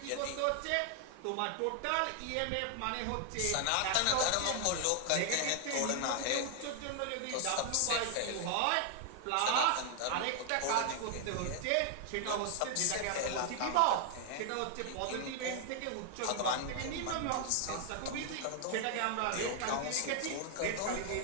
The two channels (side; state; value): both; different; correlation 0.00